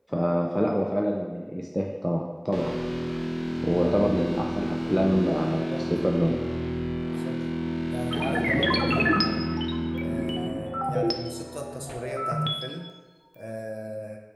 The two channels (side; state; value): both; identical; correlation 1.00